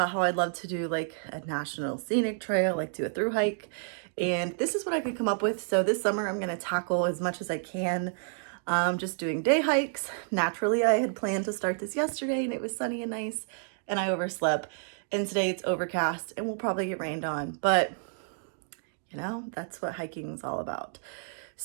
how I'd love to do like a national scenic trail, like do a through hike. And this is what I could come up with. So this summer I'm gonna tackle as much as I can, just doing day hikes. Naturally, I had planned to start this yesterday and it was sunny and nice and I overslept. And today it's overcast and we'll probably get rained on, but you know, that's what hiking is all about.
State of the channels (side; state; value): left; silent; digital silence